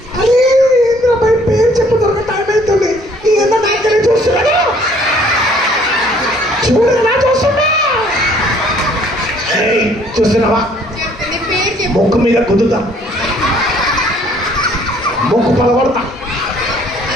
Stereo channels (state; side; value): normal; both; correlation 0.60